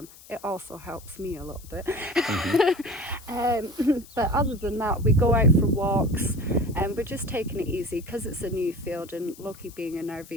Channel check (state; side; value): noise; left; hiss, 21 dB below the sound